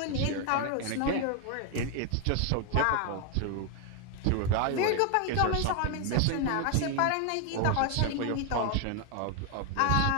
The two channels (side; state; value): both; different; correlation 0.01